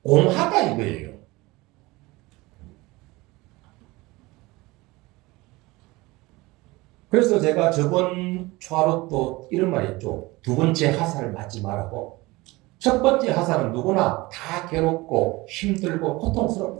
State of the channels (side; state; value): left; quieter; 21.6 dB